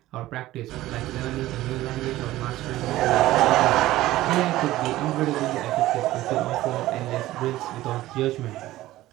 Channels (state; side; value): quieter; left; 16.0 dB